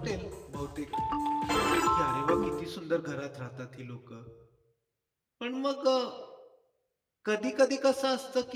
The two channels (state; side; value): identical; both; correlation 1.00